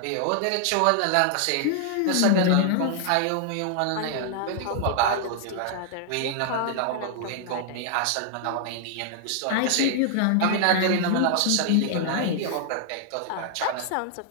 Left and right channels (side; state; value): both; different; correlation 0.00